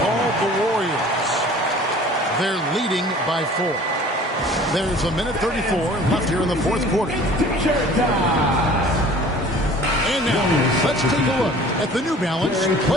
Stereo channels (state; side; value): normal; both; correlation 0.47